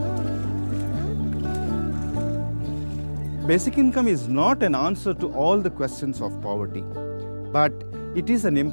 Basic income is not an answer to all the questions of poverty, but it is an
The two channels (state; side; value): inverted; both; correlation -1.00